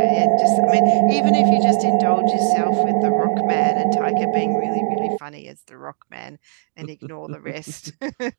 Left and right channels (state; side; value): silent; left; digital silence